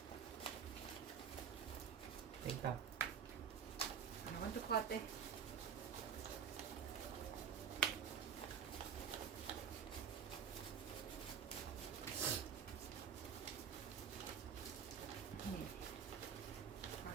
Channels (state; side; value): quieter; left; 7.4 dB